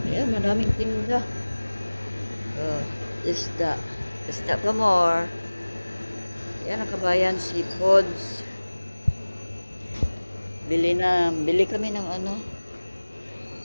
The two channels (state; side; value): inverted; both; correlation -1.00